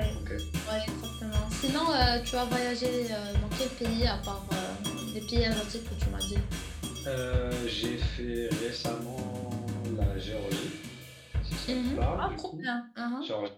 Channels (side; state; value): both; identical; correlation 1.00